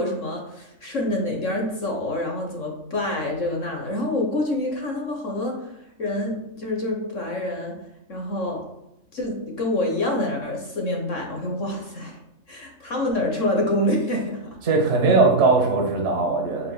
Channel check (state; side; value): late; right; 3.6 ms